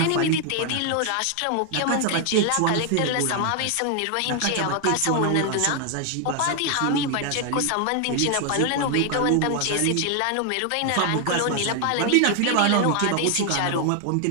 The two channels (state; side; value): different; both; correlation 0.00